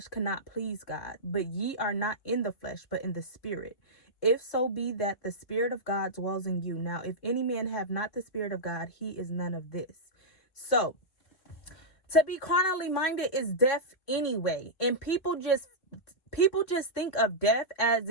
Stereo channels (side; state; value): right; late; 3.2 ms